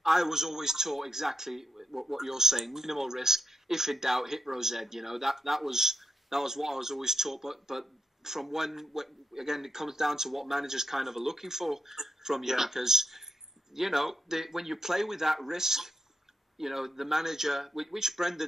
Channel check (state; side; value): normal; both; correlation 0.84